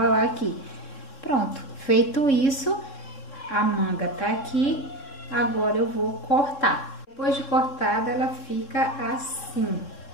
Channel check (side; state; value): right; late; 3.6 ms